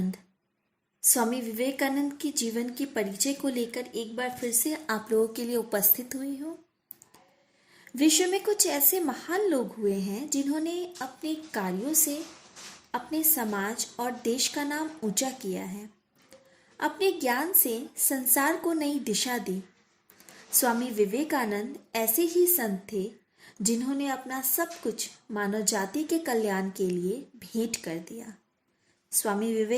के जीवन के परिचय को लेकर एक बार फिर से आप लोगों के लिए उपस्थित हुई हूँ। विश्व में कुछ ऐसे महान लोग हुए हैं जिन्होंने अपने कार्यों से अपने समाज और देश का नाम ऊंचा किया है। अपने ज्ञान से संसार को नई दिशा दी। स्वामी विवेकानंद ऐसे ही संत थे जिन्होंने अपना सब कुछ मानव जाति के कल्याण के लिए भेंट कर दिया। स्वामी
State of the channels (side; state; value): both; identical; correlation 1.00